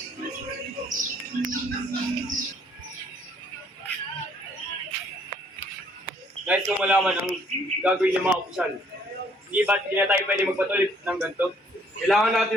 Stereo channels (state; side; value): normal; both; correlation 0.63